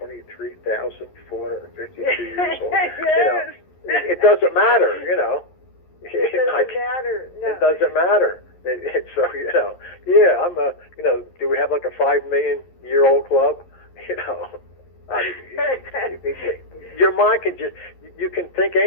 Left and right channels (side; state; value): right; late; 11 ms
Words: years old. Yes. It doesn't matter, It doesn't matter. No. It doesn't matter. So, I'm do we have like a 5 million year old club? Your mind can you can think